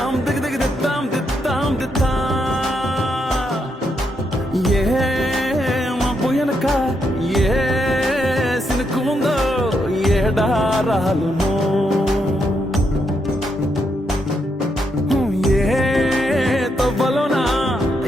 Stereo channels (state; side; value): normal; both; correlation 0.79